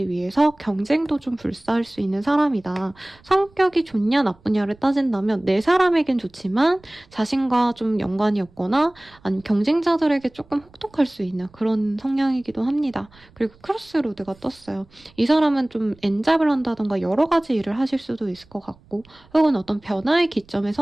위해서 경쟁도 좀 불사할 수 있는 사람이다. 성격이 좋냐 나쁘냐를 따진다면 내 사람에겐 좋지만 자신과 좀 연관이 없거나 아니면 경쟁자들에게 조금 혹독할 수 있는 그런 성향이기도 합니다. 그리고 크로스로드가 떴어요. 이 사람은 좀 엔잡을 한다던가 여러 가지 일을 하실 수도 있을 것 같고 혹은 어떤 변화의 기점에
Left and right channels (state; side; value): noise; right; rumble, 28 dB below the sound